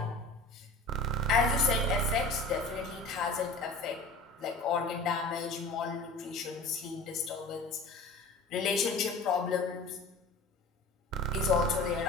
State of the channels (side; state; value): right; quieter; 3.2 dB